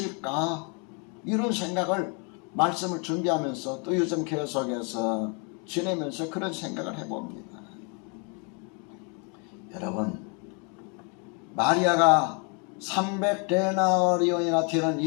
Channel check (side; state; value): right; quieter; 35.9 dB